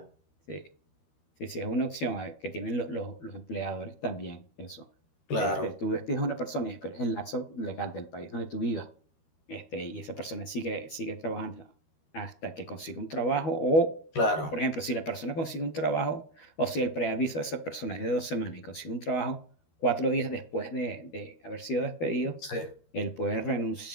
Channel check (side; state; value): right; late; 13 ms